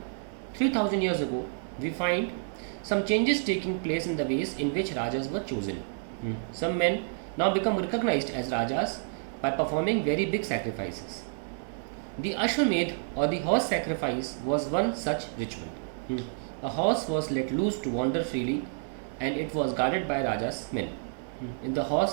3000 years ago, we find some changes taking place in the ways in which Rajas were chosen. Some men now become recognized as Rajas by performing very big sacrifices. The Ashwamedh or the horse sacrifice was one such ritual. A horse was let loose to wander freely and it was guarded by Raja's men. If the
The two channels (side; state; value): left; silent; 58 dB below the other